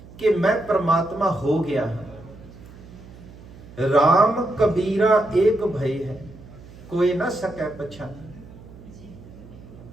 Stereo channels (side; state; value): right; noise; hum, 19 dB below the sound